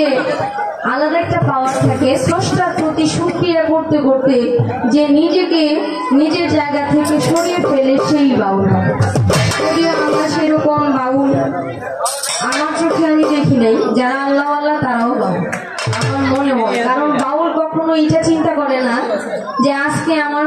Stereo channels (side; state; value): both; identical; correlation 1.00